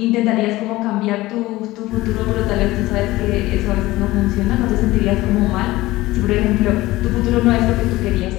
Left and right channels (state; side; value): quieter; right; 18.3 dB